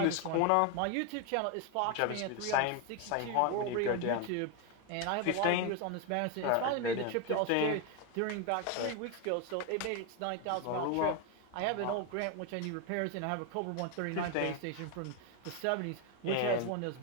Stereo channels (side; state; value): both; different; correlation 0.01